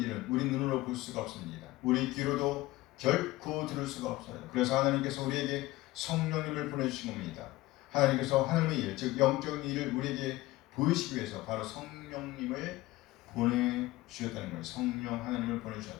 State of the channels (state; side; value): quieter; right; 18.3 dB